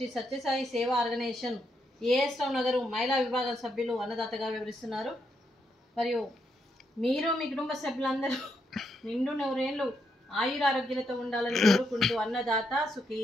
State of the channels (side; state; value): both; normal; correlation 0.79